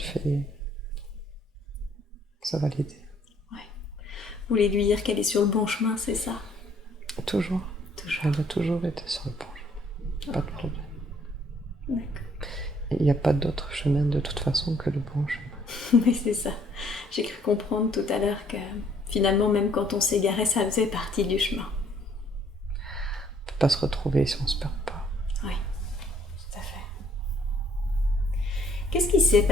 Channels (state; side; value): normal; both; correlation 0.64